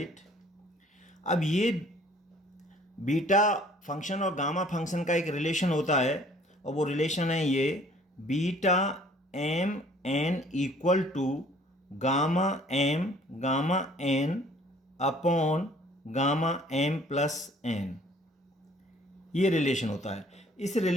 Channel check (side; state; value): both; normal; correlation 0.56